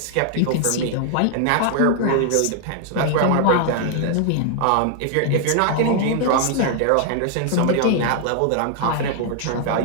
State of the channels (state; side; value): different; both; correlation 0.00